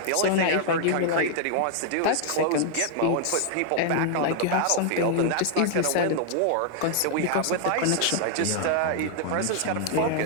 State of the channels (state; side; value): different; both; correlation 0.00